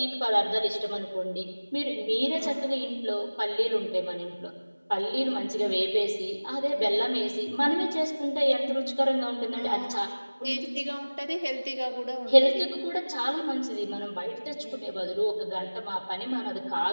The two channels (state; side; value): inverted; both; correlation -1.00